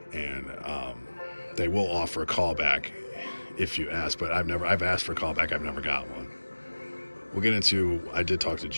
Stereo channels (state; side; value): inverted; both; correlation -1.00